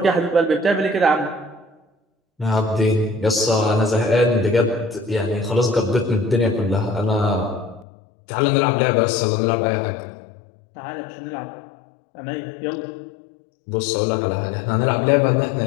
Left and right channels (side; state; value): right; drops out; at 7.9 s